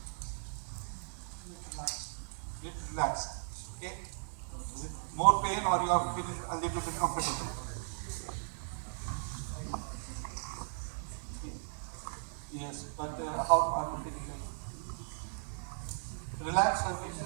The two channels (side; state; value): left; silent; digital silence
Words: Relax. Okay. Is it more pain or you are feeling a little bit comfortable? Yes, but how are you feeling? Relax, I mean.